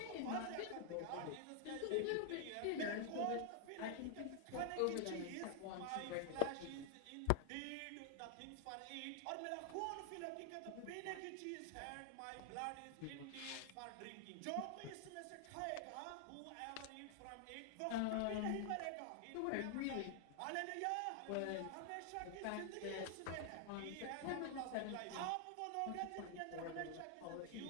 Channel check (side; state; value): both; different; correlation 0.00